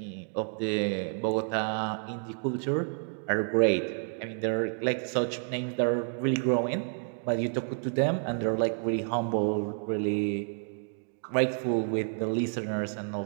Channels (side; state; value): left; silent; 58 dB below the other